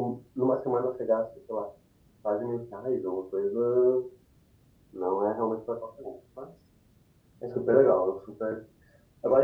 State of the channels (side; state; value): both; identical; correlation 1.00